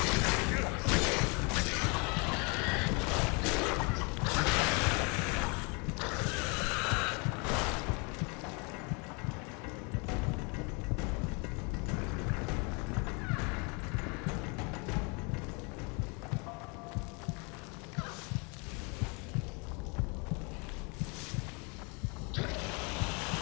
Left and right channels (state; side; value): quieter; right; 32.0 dB